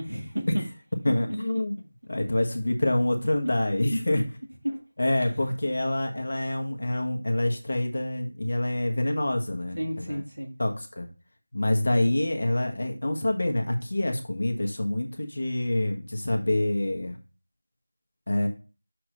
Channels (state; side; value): inverted; both; correlation -0.99